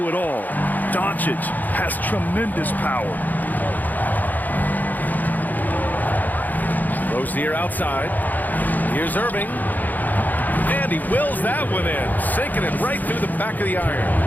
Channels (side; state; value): right; late; 0.084 ms